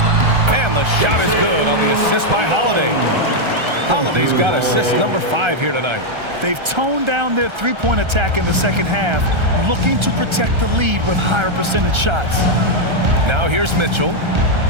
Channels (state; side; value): late; left; 1.3 ms